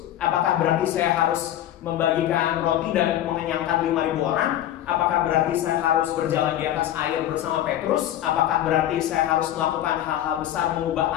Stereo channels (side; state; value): right; quieter; 12.2 dB